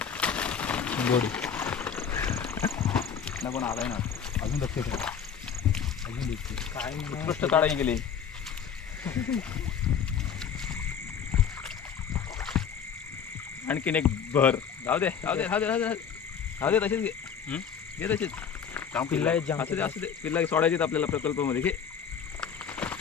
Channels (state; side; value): quieter; right; 7.4 dB